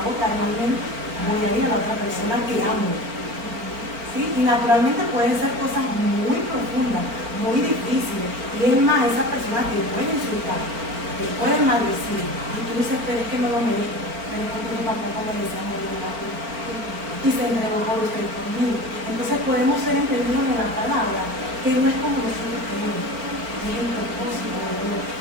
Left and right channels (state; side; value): late; left; 4.4 ms